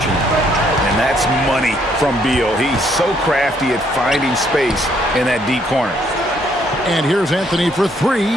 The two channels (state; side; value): normal; both; correlation 0.69